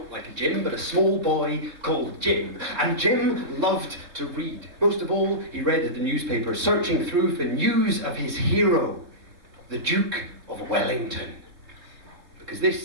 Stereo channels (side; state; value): left; late; 3.5 ms